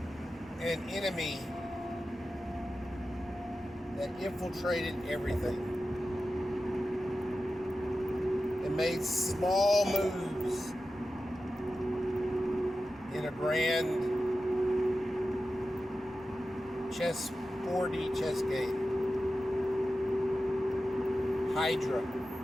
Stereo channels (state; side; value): normal; both; correlation 0.93